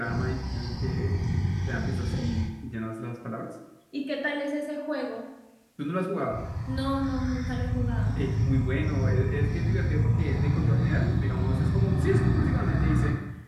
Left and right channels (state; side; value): identical; both; correlation 1.00